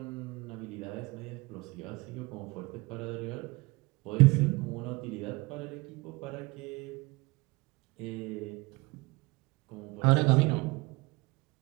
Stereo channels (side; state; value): left; quieter; 24.5 dB